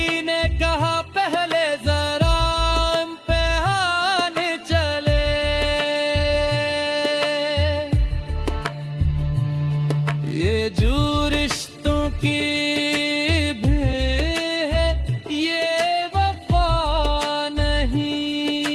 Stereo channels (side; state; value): both; identical; correlation 1.00